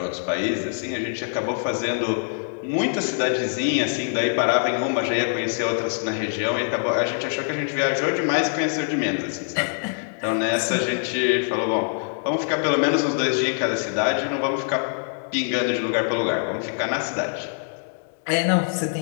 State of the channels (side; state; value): right; silent; 63 dB below the other